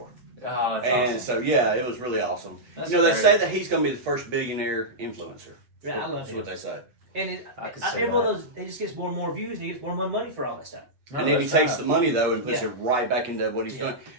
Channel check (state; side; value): late; left; 8.2 ms